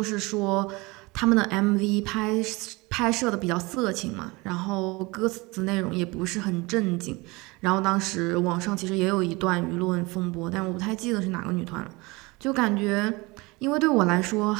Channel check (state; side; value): quieter; left; 24.4 dB